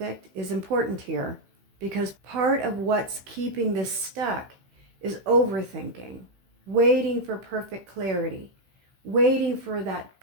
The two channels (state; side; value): late; left; 15 ms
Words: is important here, because part of what's keeping this stuck is overthinking, waiting for perfect clarity, waiting for that